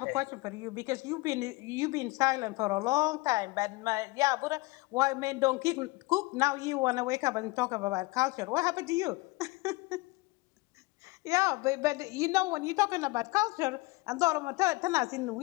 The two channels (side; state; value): right; quieter; 23.4 dB